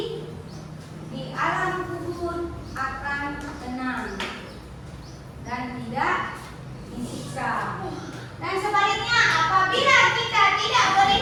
di alam kubur akan tenang dan tidak disiksa. Dan sebaliknya, apabila kita tidak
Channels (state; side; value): identical; both; correlation 1.00